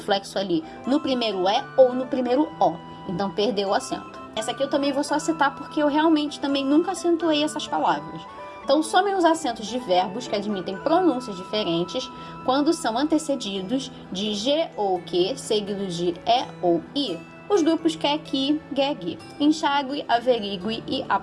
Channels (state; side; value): identical; both; correlation 1.00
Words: ali no primeiro E ou no primeiro O. Então, perdeu o acento. Essa aqui eu também vou só citar porque eu realmente também nunca acentuei essas palavras. Então, somem os acentos de verbos que admitem pronúncias diferentes quando são antecedidos de G ou Q, seguidos de E ou I. Os grupos que, que, geg, enxague, averigue e